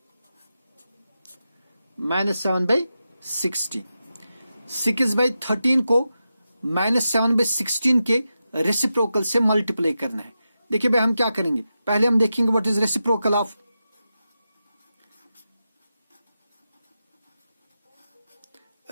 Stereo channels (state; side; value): inverted; both; correlation -0.90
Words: -7/16। 6/13 को -7/16 के रेसिप्रोकल से मल्टीप्लाई करना है। देखिए भाई, हम क्या करेंगे, पहले हम देखेंगे व्हाट इज रेसिप्रोकल ऑफ